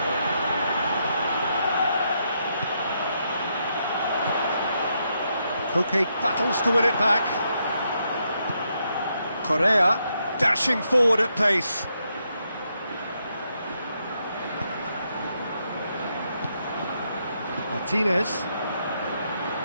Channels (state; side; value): inverted; both; correlation -0.79